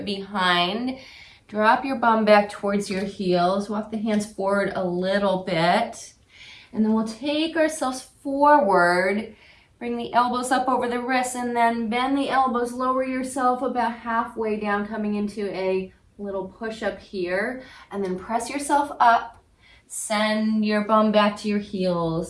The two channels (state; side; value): identical; both; correlation 1.00